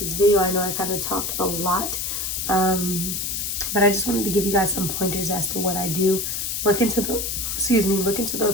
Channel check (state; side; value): noise; left; hiss, 2 dB below the sound